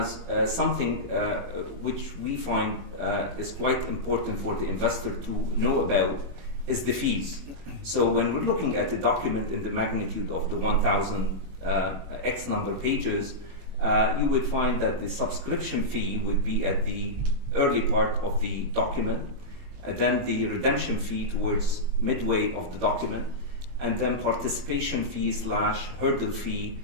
something which we find is quite important for the investor to know about is the fees. So when we're looking at the document in the magnitude of the 1,000 X number pages, you would find that the subscription fee would be at the early part of the document, and then the redemption fee towards midway of the document, and then participation fee / hurdle fee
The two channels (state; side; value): late; left; 21 ms